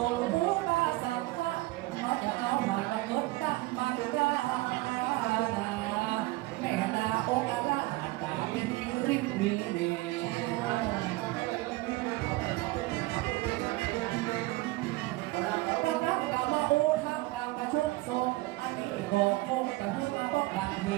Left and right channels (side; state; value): left; quieter; 20.2 dB